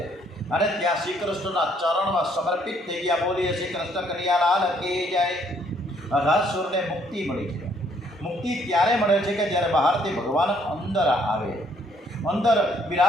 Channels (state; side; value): normal; both; correlation 0.66